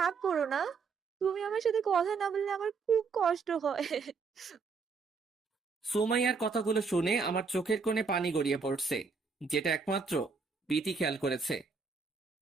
করো না। তুমি আমার সাথে কথা না বললে আমার খুব কষ্ট হয়। সুমাইয়ার কথাগুলো শুনে আমার চোখের কোণে পানি গড়িয়ে পড়ছে, যেটা একমাত্র বিথি খেয়াল করেছে।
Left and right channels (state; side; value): quieter; left; 5.0 dB